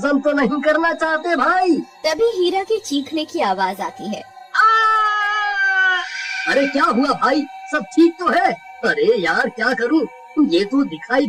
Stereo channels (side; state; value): both; identical; correlation 1.00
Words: तो नहीं करना चाहते भाई? तभी हीरा के चीखने की आवाज आती है। अरे क्या हुआ भाई, सब ठीक तो है? अरे यार, क्या करूं, ये तो दिखाई